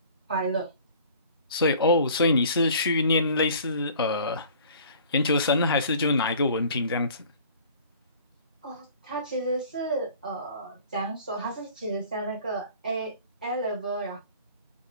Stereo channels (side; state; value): both; inverted; correlation -0.49